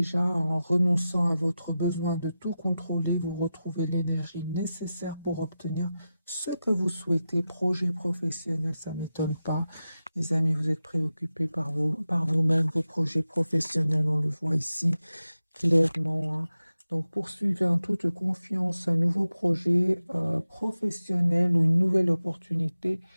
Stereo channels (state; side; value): inverted; both; correlation -0.92